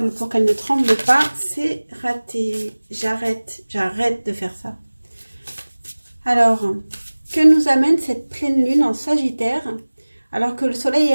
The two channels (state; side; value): inverted; both; correlation -1.00